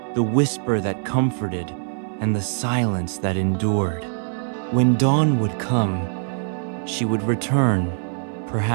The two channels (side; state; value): left; silent; 60 dB below the other